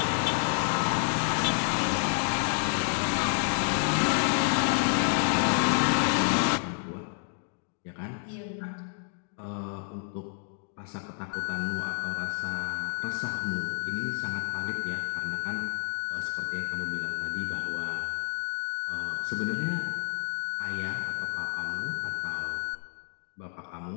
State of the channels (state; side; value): silent; right; 58 dB below the other